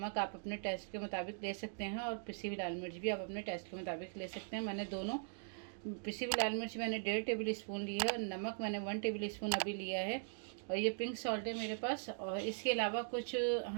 आप अपने टेस्ट के मुताबिक ले सकते हैं, और पिसी हुई लाल मिर्च भी आप अपने टेस्ट के मुताबिक ले सकते हैं। मैंने दोनों पिसी हुई लाल मिर्च मैंने 1.5 टेबल स्पून ली है, और नमक मैंने 1 टेबल स्पून अभी लिया है, और ये पिंक सॉल्ट है मेरे पास। और इसके अलावा कुछ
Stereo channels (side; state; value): left; silent; digital silence